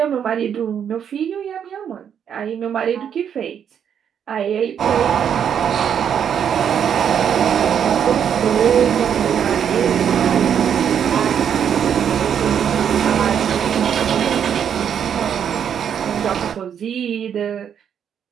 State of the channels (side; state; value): left; quieter; 8.4 dB